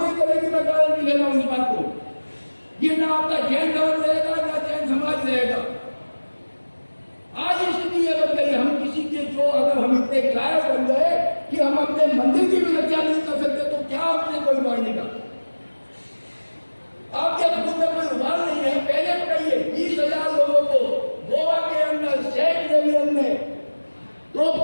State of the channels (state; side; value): inverted; both; correlation -1.00